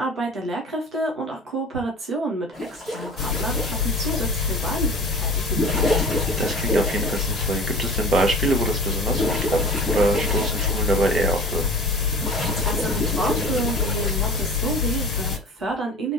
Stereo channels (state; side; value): normal; both; correlation 0.39